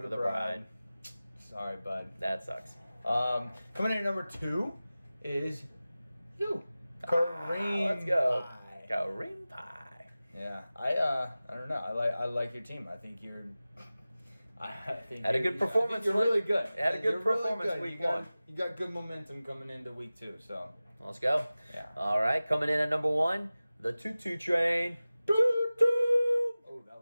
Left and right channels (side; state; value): both; inverted; correlation -0.97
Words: the bride. Sorry, bud. That sucks. Coming in at number 2 is you. Kareem. Let's go. Pie. Kareem Pie. Yeah. I don't know. I like your team. I think you're had a good performance. You're really good. Had a good performance week 1. You got good momentum coming into week 2, so let's go. Yeah. All right, coming in at number 1, the Tutu Train. Oh, that